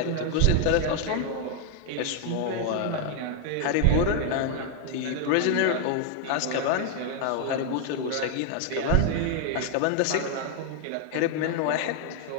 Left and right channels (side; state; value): both; different; correlation 0.00